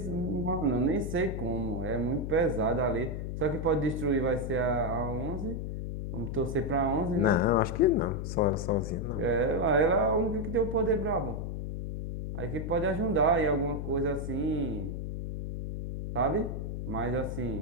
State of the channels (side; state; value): left; noise; hum, 4 dB below the sound